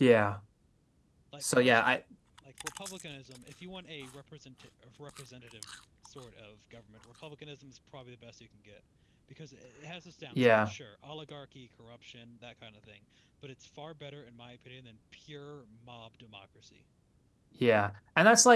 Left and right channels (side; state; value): both; identical; correlation 1.00